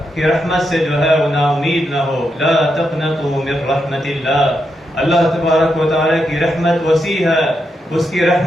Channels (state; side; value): normal; both; correlation 0.83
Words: کی رحمت سے جو ہے وہ نا امید نہ ہو۔ لا تقنطوا من رحمت اللہ، اللہ تبارک و تعالیٰ کی رحمت وسیع ہے، اس کی